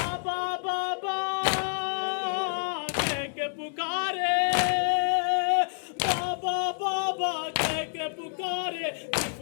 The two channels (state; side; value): silent; right; digital silence